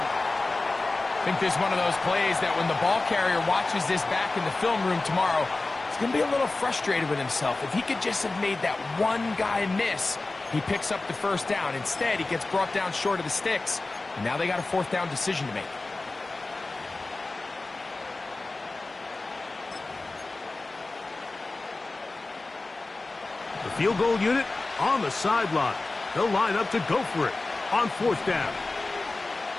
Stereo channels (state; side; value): quieter; right; 3.3 dB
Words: think this is one of those plays that when the ball carrier watches this back in the film room tomorrow, he's going to be a little frustrated with himself. If he could just have made that one guy miss, he picks up the 1st down. Instead, he gets brought down short of the sticks. And now they got a 4th down decision to make. The field goal unit on the sideline. They'll line up to go for it on 4th down.